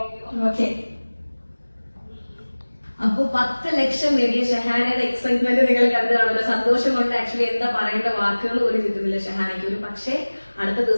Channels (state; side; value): inverted; both; correlation -1.00